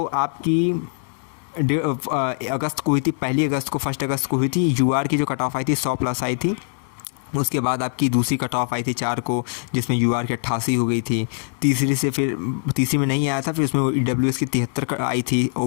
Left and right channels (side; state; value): right; silent; 64 dB below the other